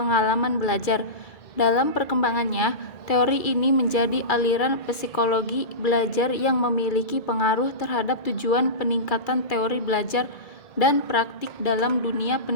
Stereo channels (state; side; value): late; right; 2.3 ms